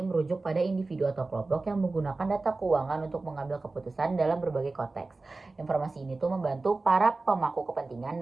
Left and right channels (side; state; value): left; quieter; 3.5 dB